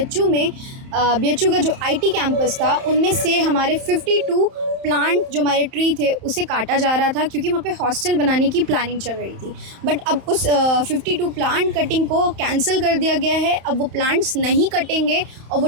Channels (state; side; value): late; left; 31 ms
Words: में बीएचयू का जो आईटी कैंपस था, उनमें से हमारे 52 प्लांट जो हमारे ट्री थे उसे काटा जा रहा था, क्योंकि वहाँ पे हॉस्टल बनाने की प्लानिंग चल रही थी। बट अब उस 52 प्लांट कटिंग को कैंसिल कर दिया गया है। अब वो प्लांट्स नहीं कटेंगे और वो